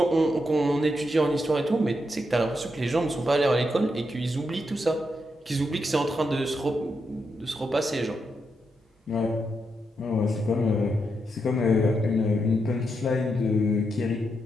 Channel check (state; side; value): normal; both; correlation 0.83